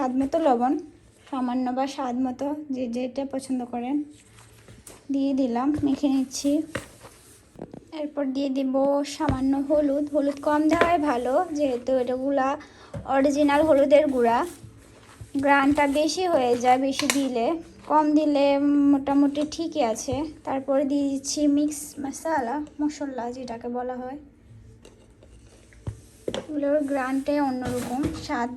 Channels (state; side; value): identical; both; correlation 1.00